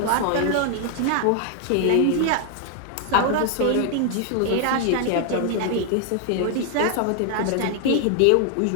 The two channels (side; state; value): both; different; correlation 0.00